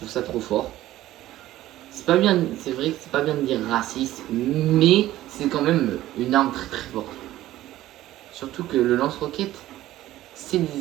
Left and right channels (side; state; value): left; quieter; 14.8 dB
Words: trop fort. C'est pas bien, c'est vrai que c'est pas bien de dire raciste, mais c'est quand même une arme très forte. Surtout que le lance-roquette, c'est